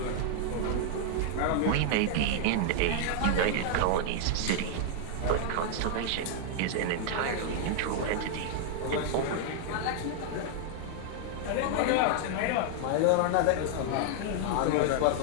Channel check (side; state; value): both; different; correlation 0.00